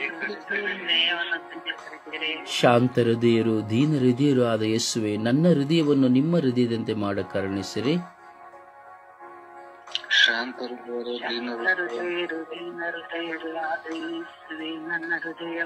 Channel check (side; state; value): both; identical; correlation 1.00